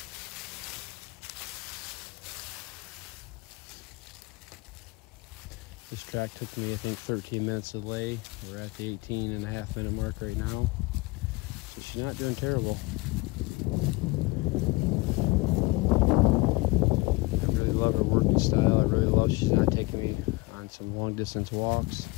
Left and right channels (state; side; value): quieter; right; 23.0 dB